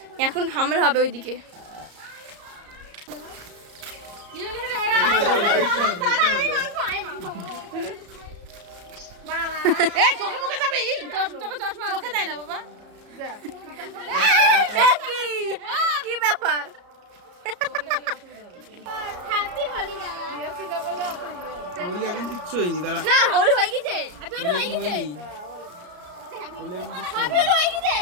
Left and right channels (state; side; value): late; left; 34 ms